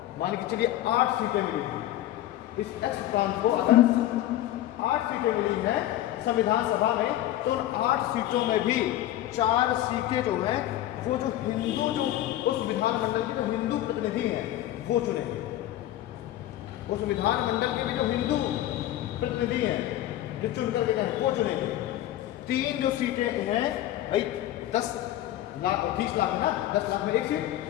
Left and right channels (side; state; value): right; quieter; 13.7 dB